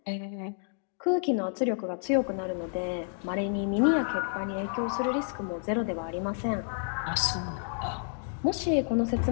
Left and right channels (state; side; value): silent; right; 57 dB below the other